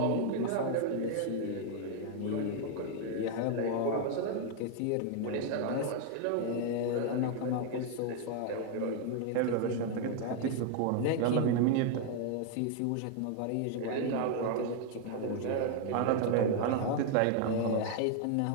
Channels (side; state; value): both; different; correlation 0.00